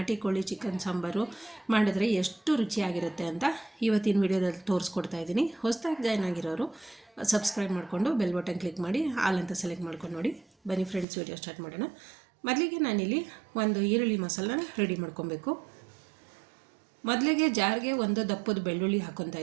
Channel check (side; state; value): left; drops out; at 11.1 s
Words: ಕೋಳಿ ಚಿಕನ್ ಸಾಂಬಾರು ಮಾಡಿದ್ರೆ ಎಷ್ಟು ರುಚಿಯಾಗಿರುತ್ತೆ ಅಂತ ಇವತ್ತಿನ ವಿಡಿಯೋದಲ್ಲಿ ತೋರಿಸ್ಕೊಡ್ತಾ ಇದ್ದೀನಿ. ಹೊಸದಾಗಿ ಜಾಯ್ನ್ ಆಗಿರೋರು ಸಬ್ಸ್ಕ್ರೈಬ್ ಮಾಡಿಕೊಂಡು ಬೆಲ್ ಬಟನ್ ಕ್ಲಿಕ್ ಮಾಡಿ ಆಲ್ ಅಂತ ಸೆಲೆಕ್ಟ್ ಮಾಡ್ಕೊಂಡು ನೋಡಿ. ಬನ್ನಿ ಫ್ರೆಂಡ್ಸ್, ವಿಡಿಯೋ ಸ್ಟಾರ್ಟ್ ಮಾಡೋಣ. ಮೊದಲಿಗೆ ನಾನಿಲ್ಲಿ ಒಂದು ಈರುಳ್ಳಿ ಮಸಾಲನ ರೆಡಿ ಮಾಡ್ಕೊಬೇಕು. ಮೊದಲಿಗೆ ಜಾರ್ಗೆ ಒಂದು ದಪ್ಪದ ಬೆಳ್ಳುಳ್ಳಿ ಹಾಕ್ಕೊತಾ